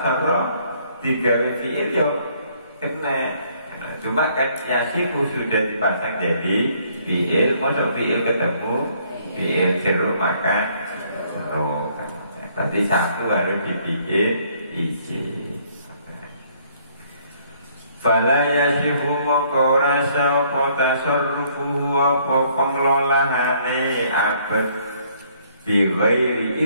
digawe fi'il yo kena. Cuma kan yasiku sudah dipasang jadi fi'il, masuk fi'il ketemu fi'il jeruk maka jeruk. Tadi satu harus dibikin izin. Fala yasiku moko rasa apa tasarrufuhu apa pengelolaane abad bighairi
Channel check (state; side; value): inverted; both; correlation -0.65